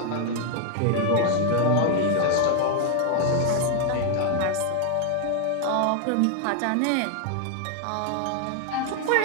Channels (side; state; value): both; different; correlation 0.00